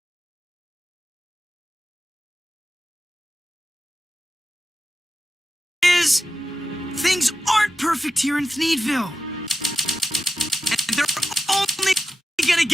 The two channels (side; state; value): both; normal; correlation 0.91